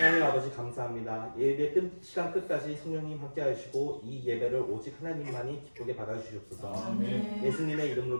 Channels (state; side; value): inverted; both; correlation -1.00